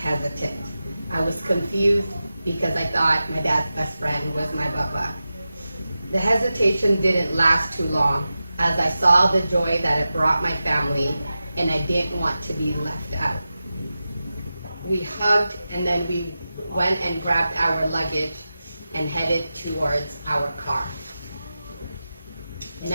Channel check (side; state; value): both; inverted; correlation -0.93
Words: I was confused because I thought my dad's best friend was my Baba. The hesitation didn't last too long as I saw the joy that it brought my family, and I didn't want to be left out. We hugged, and then we went and grabbed our luggage and headed towards our car.